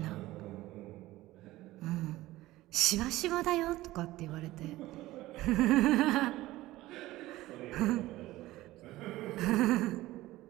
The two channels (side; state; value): left; quieter; 17.1 dB